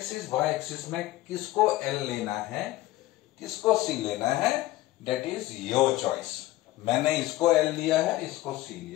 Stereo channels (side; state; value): right; quieter; 16.8 dB